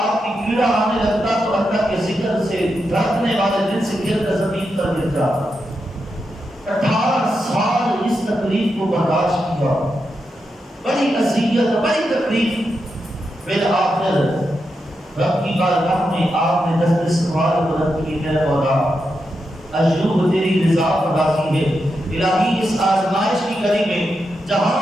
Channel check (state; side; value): normal; both; correlation 0.86